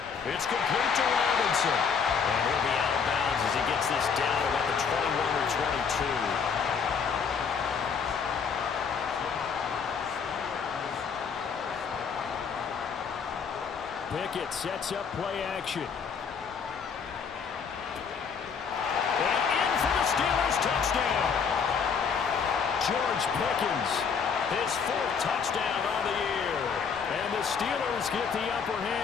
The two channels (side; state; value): right; quieter; 6.2 dB